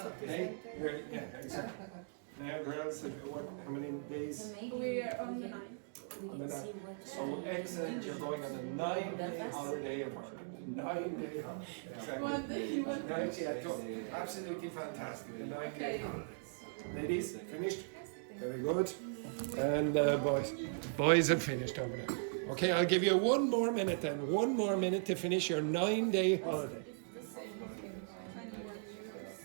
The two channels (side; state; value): left; silent; digital silence